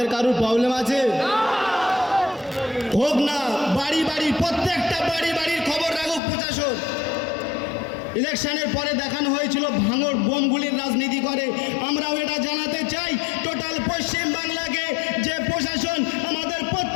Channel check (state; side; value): drops out; right; at 6.2 s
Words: কারোর প্রবলেম আছে? হোক না, বাড়ি বাড়ি প্রত্যেকটা বাড়ি বাড়ির খবর রাখুক প্রশাসন। ইলেকশনের পরে দেখানো হয়েছিল ভাঙড় বোমগুলির রাজনীতি করে। আমরাও এটা জানাতে চাই টোটাল পশ্চিম বাংলাকে যে প্রশাসন আমাদের